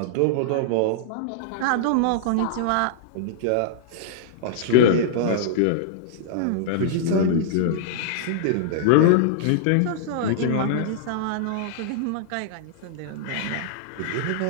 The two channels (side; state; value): both; different; correlation -0.02